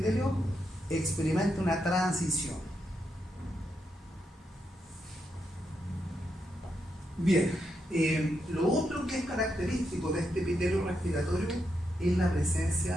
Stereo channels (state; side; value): normal; both; correlation 0.83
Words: experimenta una transición. Bien, lo otro que es característico de este epitelio respiratorio es la